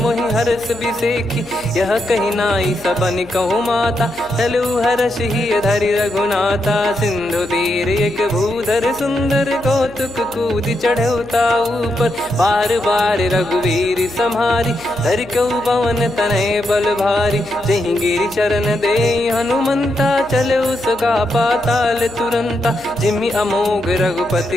मोहि हरस बिसेखी यह कही नाई सबन कहु माता चलु हरष ही धरि रघुनाथा सिंधु तीर एक भूधर सुंदर कौतुक कूद चढ़ौता ऊपर बार बार रघुवीर सम्हारी धरि कौ पवन तनय बल भारी जहि गिरि चरण दे हनुमंता चले उसका पाताल तुरंता जिमि अमोघ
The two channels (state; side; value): noise; left; hum, 24 dB below the sound